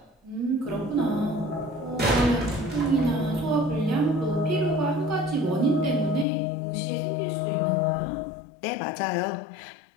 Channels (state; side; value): drops out; right; at 6.2 s